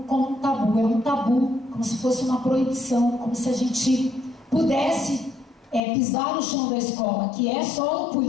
um tabu. É um tabu, como se fosse uma proibição, como se a gente pudesse pisar no chão da escola, que é só o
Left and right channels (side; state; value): right; drops out; at 5.8 s